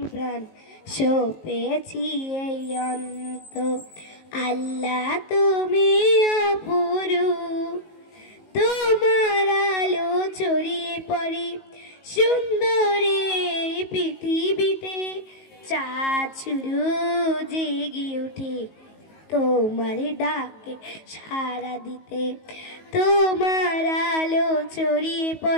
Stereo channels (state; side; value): late; right; 19 ms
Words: প্রাণ, সপেছি এই অন্তর। আল্লাহ তুমি অপরূপ, তোমার আলো ছড়িয়ে পড়ে সুন্দর এই পৃথিবীতে, চাঁদ শুরু জেগে ওঠে তোমার ডাকে সাড়া দিতে। তোমার আলো ছড়িয়ে